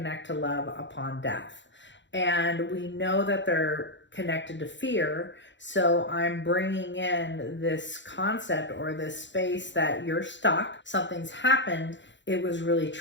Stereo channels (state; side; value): late; right; 0.53 ms